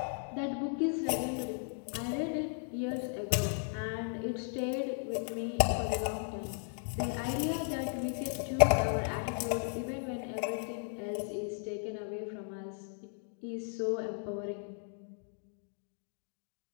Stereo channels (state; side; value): silent; right; 54 dB below the other